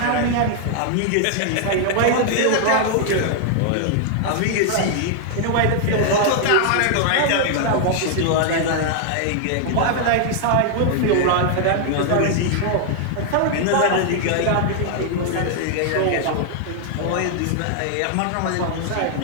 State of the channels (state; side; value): different; both; correlation 0.00